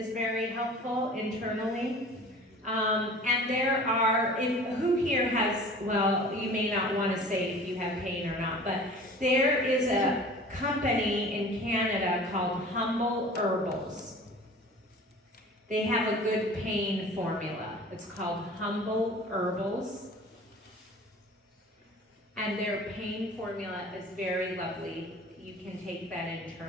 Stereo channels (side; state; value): both; normal; correlation 0.43